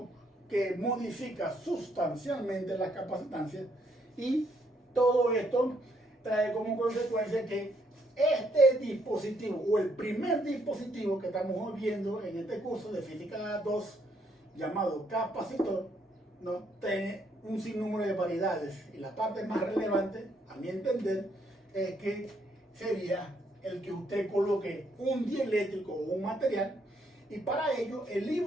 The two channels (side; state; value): both; normal; correlation 0.72